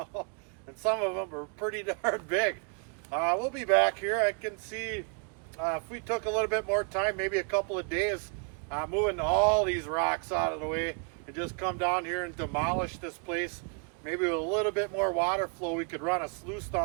and some of them are pretty darn big. We'll be back here. I can see if we took a little bit more time, maybe a couple of days, moving all these rocks out of the way, and just come down here and demolish this place. Maybe with a little bit more water flow, we could run a sluice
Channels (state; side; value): quieter; left; 38.8 dB